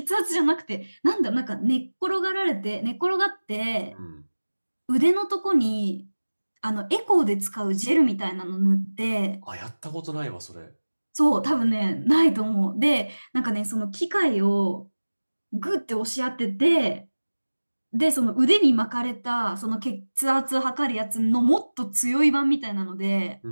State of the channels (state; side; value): inverted; both; correlation -1.00